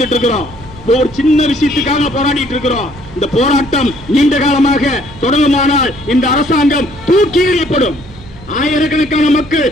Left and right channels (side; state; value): right; noise; hum, 20 dB below the sound